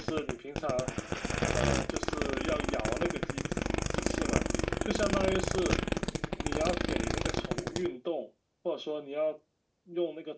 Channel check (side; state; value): both; identical; correlation 1.00